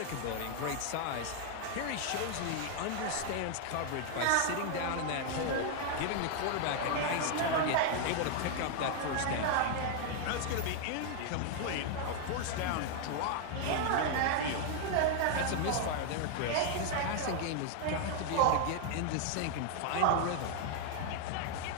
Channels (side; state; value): both; different; correlation 0.00